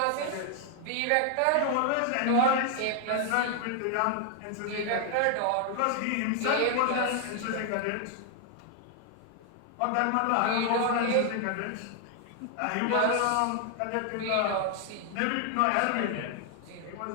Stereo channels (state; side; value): different; both; correlation 0.00